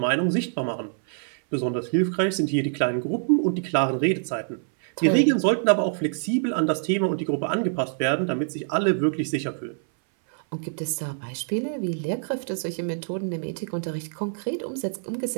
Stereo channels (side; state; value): left; silent; 59 dB below the other